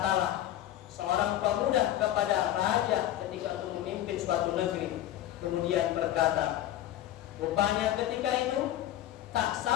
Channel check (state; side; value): quieter; right; 13.0 dB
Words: seorang pemuda kepada raja ketika itu memimpin suatu negeri. Kemudian berkata, rupanya ketika itu tak